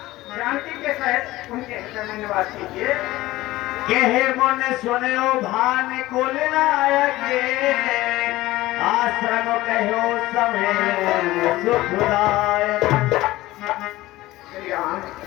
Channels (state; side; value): quieter; right; 17.6 dB